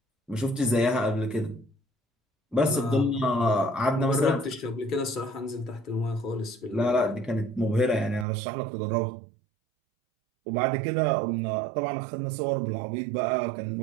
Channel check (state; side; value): drops out; left; at 8.2 s